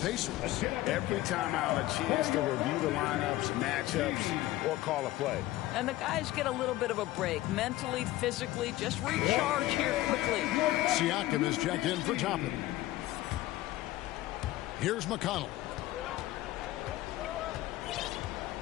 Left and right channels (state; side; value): quieter; right; 16.5 dB